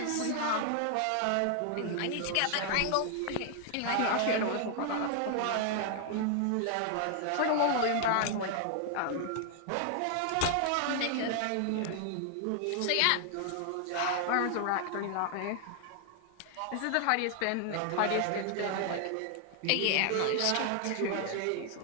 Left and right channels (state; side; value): different; both; correlation 0.00